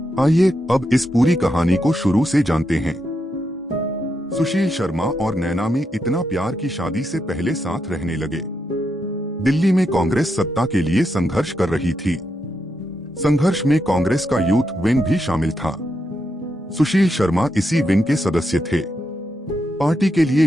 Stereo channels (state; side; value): normal; both; correlation 0.83